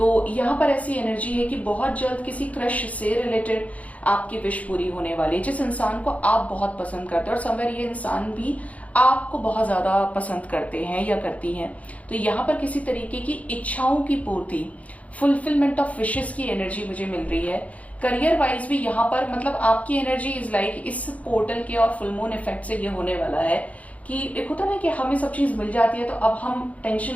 यहाँ पर ऐसी एनर्जी है कि बहुत जल्द किसी क्रश से रिलेटेड आपकी विश पूरी होने वाली है, जिस इंसान को आप बहुत पसंद करते हैं, और समवेयर ये इंसान भी आपको बहुत ज्यादा पसंद करते हैं या करती हैं। तो यहाँ पर किसी तरीके की इच्छाओं की पूर्ति, फुलफिलमेंट ऑफ विशेस की एनर्जी मुझे मिल रही है। करियर वाइज भी यहाँ पर मतलब आपकी एनर्जी इज लाइक इस पोर्टल के और फुल मून इफेक्ट से ये होने वाला है कि एक होता ना कि हमें सब चीज मिल जाती है तो अब हम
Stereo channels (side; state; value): right; late; 0.068 ms